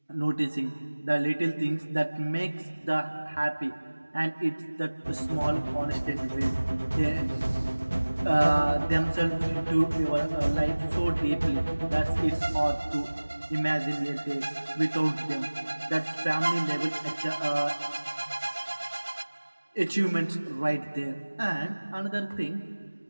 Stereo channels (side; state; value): both; inverted; correlation -1.00